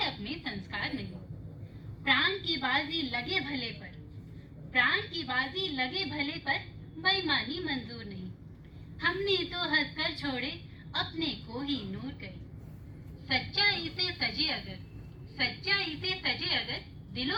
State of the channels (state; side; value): identical; both; correlation 1.00